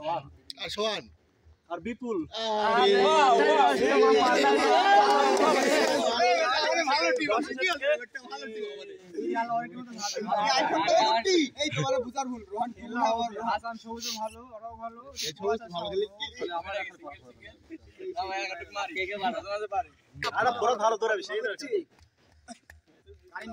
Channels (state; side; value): identical; both; correlation 1.00